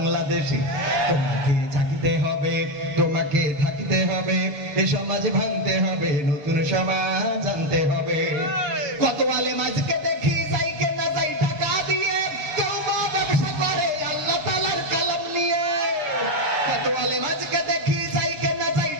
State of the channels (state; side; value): late; left; 7.0 ms